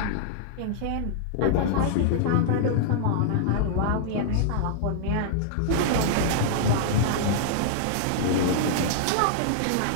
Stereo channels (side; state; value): both; different; correlation -0.01